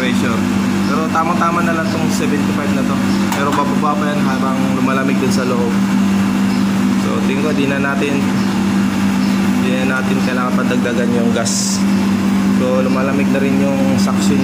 Pero tamang-tama na lang tong 75 na to. Pero bababa pa yan habang lumalamig dun sa loob. So tingin ko di na natin kailangan padagdagan yung gas. So lumalamig na rin yung suction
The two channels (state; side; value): identical; both; correlation 1.00